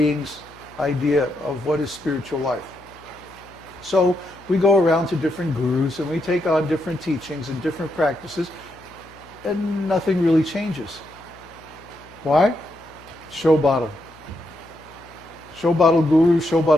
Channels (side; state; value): left; noise; hum, 25 dB below the sound